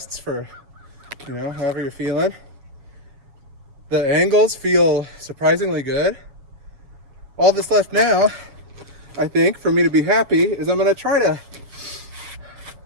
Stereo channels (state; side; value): late; left; 7.2 ms